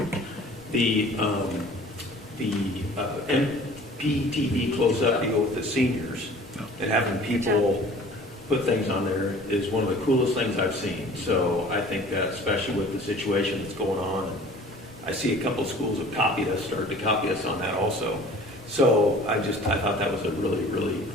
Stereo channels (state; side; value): normal; both; correlation 0.47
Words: the MPTV-CloseUp deal with the seniors and having people put things on there is one of the coolest things I've seen. So I think that, especially with the situation that's going on, I see a couple of schools have started to copy us on that also. So I thought that was a really, really